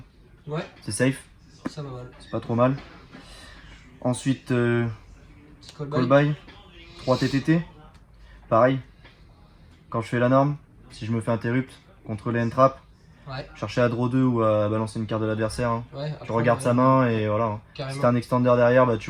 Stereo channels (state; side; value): identical; both; correlation 1.00